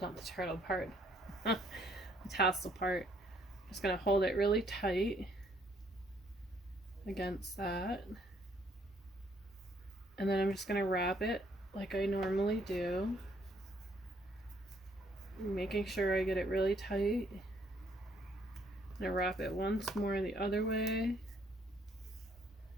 the turtle part. The tassel part. Just going to hold it really tight against that. And then I'm just going to wrap it like I normally do. Making sure I get it really tight. I'm going to wrap it once more the other way.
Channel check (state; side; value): normal; both; correlation 0.67